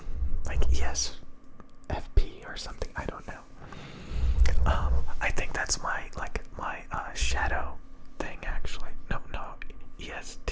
like ESFP or something, I don't know. I think that's my shadow thing, actually. No,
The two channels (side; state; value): both; identical; correlation 1.00